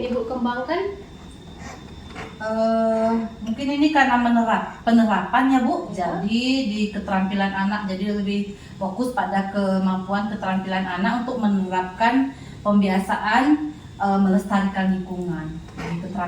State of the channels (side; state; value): both; identical; correlation 1.00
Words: Ibu kembangkan? Mungkin ini karena penerapannya Bu, jadi di keterampilan anak, jadi lebih fokus pada kemampuan keterampilan anak untuk menerapkan pembiasaan melestarikan lingkungan, jadi